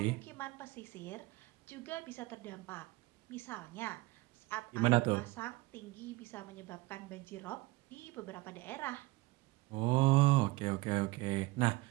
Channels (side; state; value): left; quieter; 21.1 dB